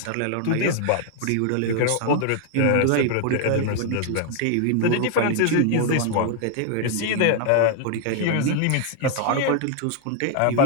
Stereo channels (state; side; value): different; both; correlation 0.00